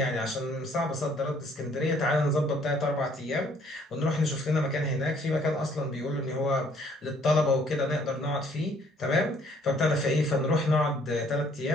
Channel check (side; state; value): both; normal; correlation 0.62